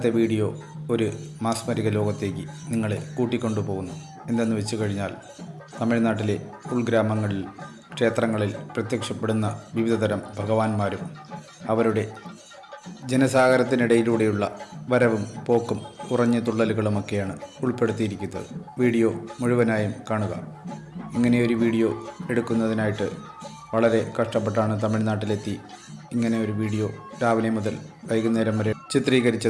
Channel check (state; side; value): identical; both; correlation 1.00